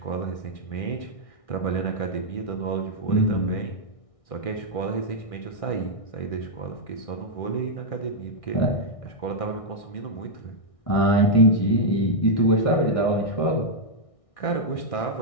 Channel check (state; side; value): late; right; 1.6 ms